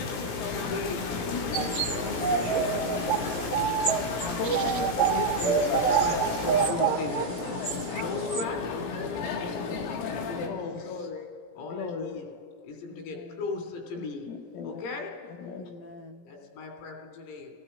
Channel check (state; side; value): late; right; 17 ms